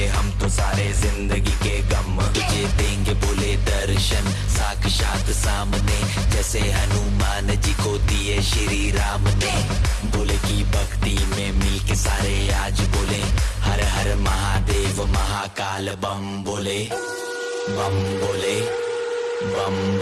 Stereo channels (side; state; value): both; identical; correlation 1.00